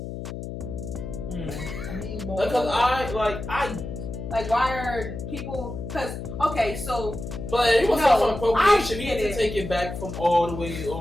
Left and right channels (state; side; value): noise; left; hum, 8 dB below the sound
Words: Why are people? Because okay, so. But it was also appropriation. He had to take it back from all the way.